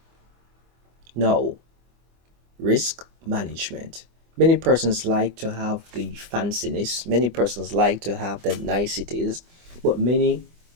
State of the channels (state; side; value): late; left; 24 ms